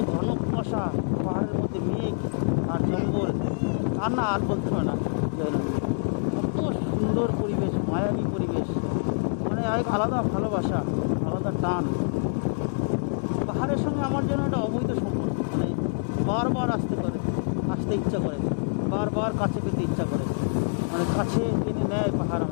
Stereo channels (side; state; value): right; silent; digital silence